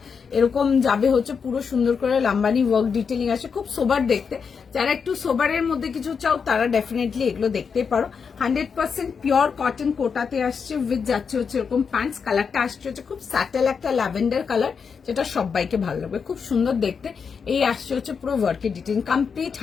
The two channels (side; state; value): right; quieter; 6.0 dB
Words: এরকম যাবে হচ্ছে পুরো সুন্দর করে লাম্বানি ওয়ার্ক ডিটেলিং আছে, খুব সোবার দেখতে। যারা একটু সোবারের মধ্যে কিছু চাও তারা ডেফিনেটলি এগুলো দেখতে পারো। 100% পিওর কটন কোটাতে আসছে, উইথ যাচ্ছে হচ্ছে এরকম প্যান্টস। কালারটা আসছে হচ্ছে খুব স্যাটেল একটা ল্যাভেন্ডার কালার, যেটা সবাইকে ভালো লাগবে, খুব সুন্দর দেখতে। এই আসছে হচ্ছে পুরো ওয়ার্কের ডিটেলিং, কমপ্লিট